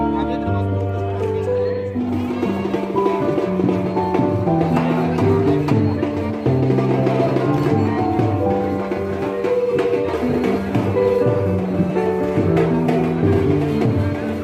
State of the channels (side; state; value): both; identical; correlation 1.00